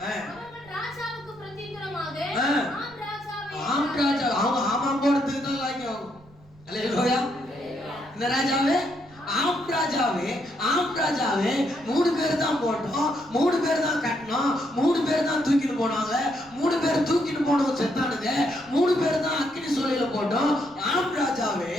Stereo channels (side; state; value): right; noise; rumble, 27 dB below the sound